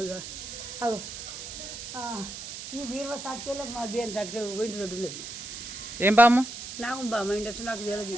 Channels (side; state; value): right; noise; hiss, 9 dB below the sound